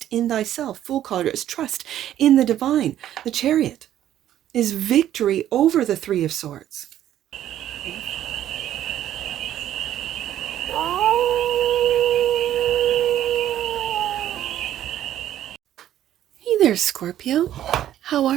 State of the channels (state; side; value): quieter; left; 11.8 dB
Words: in thyself. Fool card is trust in the divine. The Chariot is victory over the Three of Swords. Hey there, Scorpio. How